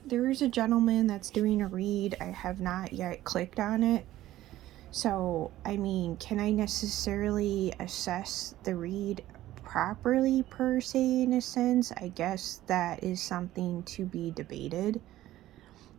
there's a gentleman that's doing a read. I have not yet clicked on it. So, I mean, can I necessarily assess the read properly, per se, in a sense? I guess that is something to be debated.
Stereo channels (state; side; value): quieter; left; 14.7 dB